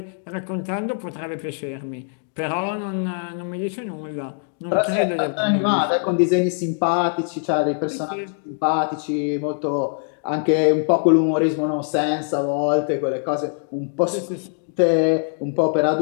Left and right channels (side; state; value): right; silent; 64 dB below the other